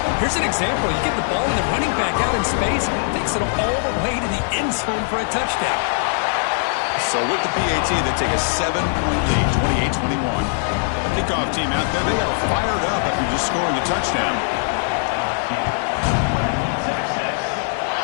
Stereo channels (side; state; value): right; silent; 65 dB below the other